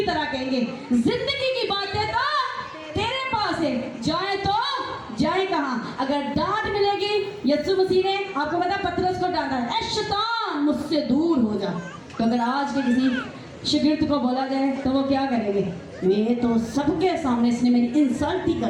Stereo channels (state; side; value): identical; both; correlation 1.00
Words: तरह कहेंगे जिंदगी की बातें तो तेरे पास है, जाए तो जाए कहाँ? अगर डांट मिलेगी, यीशु मसीह ने आपको पता पतरस को डांटा, ऐ शैतान मुझसे दूर हो जा। तो अगर आज के किसी शागिर्द को बोला जाए तो वो क्या करेंगे? मैं तो सबके सामने इसने मेरी इंसल्ट ही